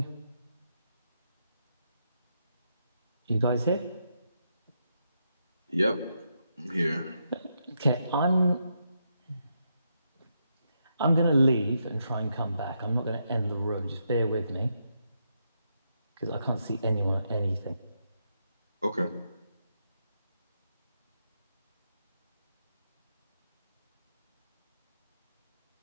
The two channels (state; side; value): inverted; both; correlation -0.81